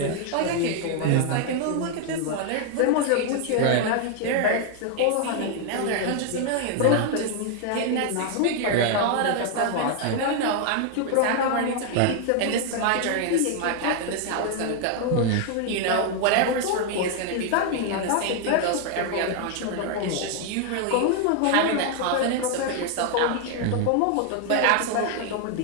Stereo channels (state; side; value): different; both; correlation 0.00